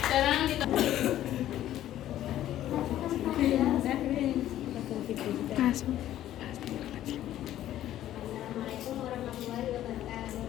Sekarang kita Assalamualaikum warahmatullahi wabarakatuh.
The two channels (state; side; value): quieter; right; 12.7 dB